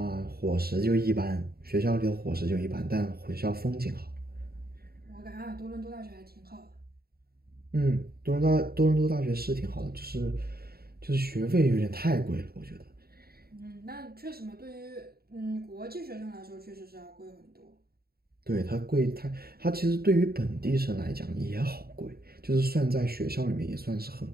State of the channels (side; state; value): left; late; 0.45 ms